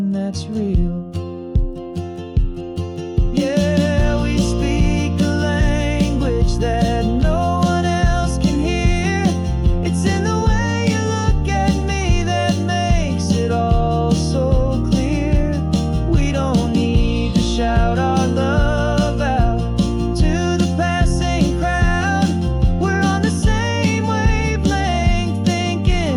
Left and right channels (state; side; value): identical; both; correlation 1.00